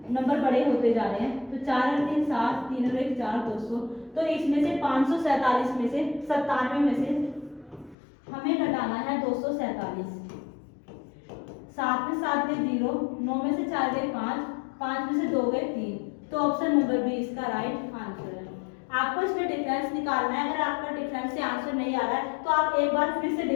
नंबर बड़े होते जा रहे हैं। तो 4 और 3 7, 3 और 1 4, 200। तो इसमें से 547 में से 97 में से हमें घटाना है 247। 7 में 7 गए 0, 9 में से 4 गए 5, 5 में से 2 गए 3। तो ऑप्शन नंबर बी इसका राइट आंसर है। आपको इसमें डिफरेंस निकालना है। अगर आपका डिफरेंस से आंसर नहीं आ रहा है तो आप एक बार फिर से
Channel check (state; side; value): drops out; right; at 8.0 s